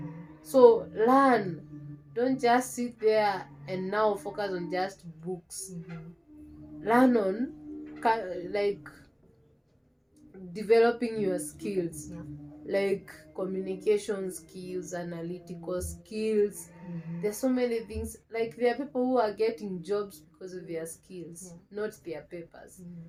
So learn. Don't just sit there and now focus on just books. Learn on, like, developing your skills. Like, communication skills, analytical skills. There's so many things. Like, there are people who are getting jobs because of their skills, not their papers.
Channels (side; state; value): both; identical; correlation 1.00